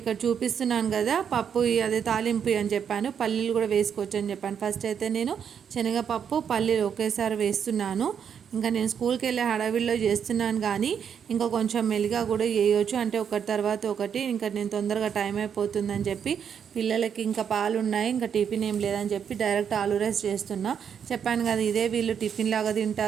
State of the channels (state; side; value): quieter; left; 7.8 dB